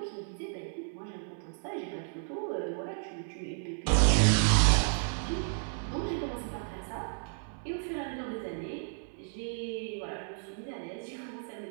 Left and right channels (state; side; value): silent; left; 56 dB below the other